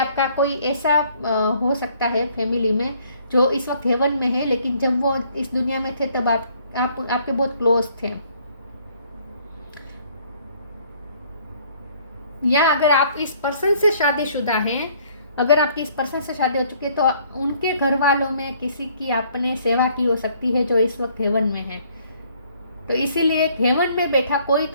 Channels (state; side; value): inverted; both; correlation -0.62